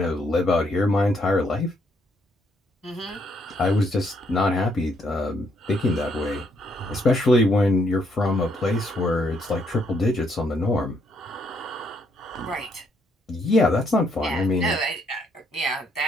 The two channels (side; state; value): both; normal; correlation 0.71